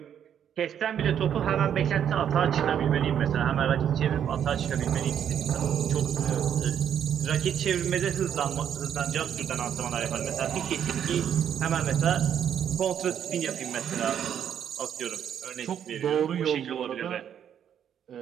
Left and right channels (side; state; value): left; quieter; 9.1 dB